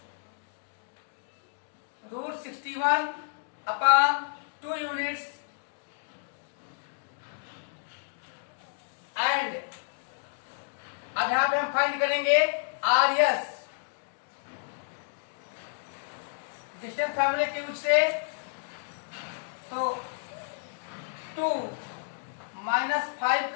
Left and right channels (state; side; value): silent; right; digital silence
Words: root 61 upon 2 units and अब यहां पे हम फाइंड करेंगे RS डिस्टेंस फॉर्मूले के यूज से, तो 2 माइनस 5